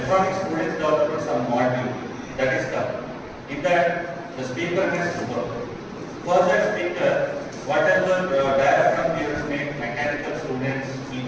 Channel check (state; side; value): identical; both; correlation 1.00